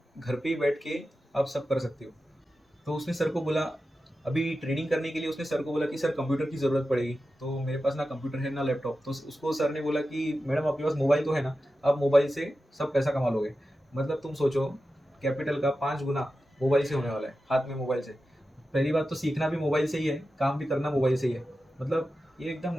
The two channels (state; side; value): normal; both; correlation 0.92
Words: घर पे ही बैठ के आप सब कर सकते हो। तो उसने सर को बोला, अभी ट्रेडिंग करने के लिए उसने सर को बोला कि सर कंप्यूटर की ज़रूरत पड़ेगी, तो मेरे पास ना कंप्यूटर है ना लैपटॉप। तो उसको सर ने बोला कि मैडम आपके पास मोबाइल तो है ना, आप मोबाइल से सब पैसा कमा लोगे। मतलब तुम सोचो, कैपिटल का 5 गुना मोबाइल से होने वाला है, हाथ में मोबाइल से। पहली बात तो सीखना भी मोबाइल से ही है, काम भी करना मोबाइल से ही है। मतलब ये एकदम